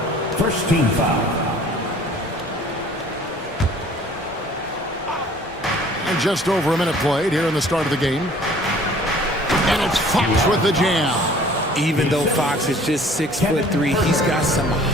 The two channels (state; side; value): normal; both; correlation 0.52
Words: First team foul. And just over a minute played here in the start of the game. And it's Fox with the jam. Even though Fox is just 6'3", he's got some